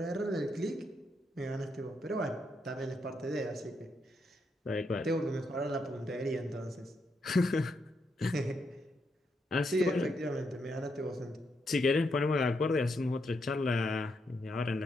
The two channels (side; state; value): both; normal; correlation 0.80